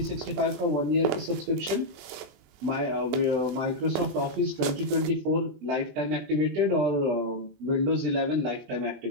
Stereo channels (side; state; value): left; late; 21 ms